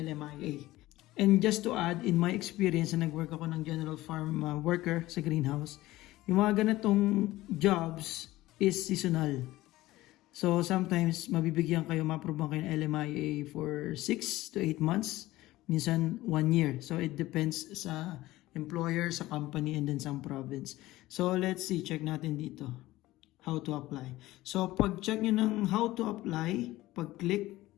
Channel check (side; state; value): right; quieter; 17.2 dB